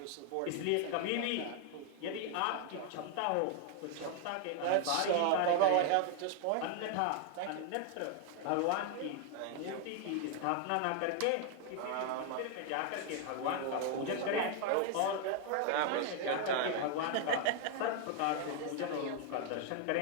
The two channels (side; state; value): both; different; correlation 0.00